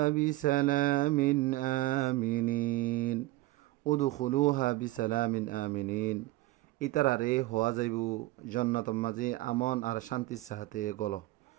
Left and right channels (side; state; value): left; quieter; 18.6 dB